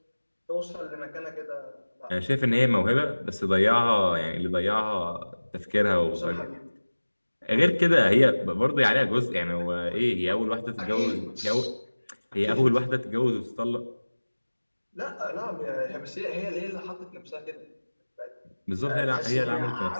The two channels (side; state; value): both; inverted; correlation -1.00